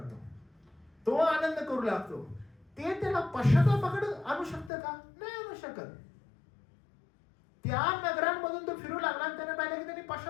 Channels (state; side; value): drops out; right; at 4.7 s